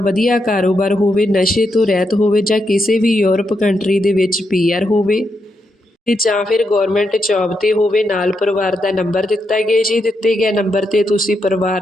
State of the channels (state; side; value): normal; both; correlation 0.82